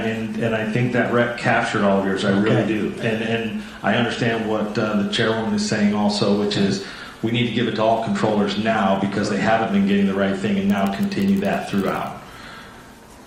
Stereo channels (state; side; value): identical; both; correlation 1.00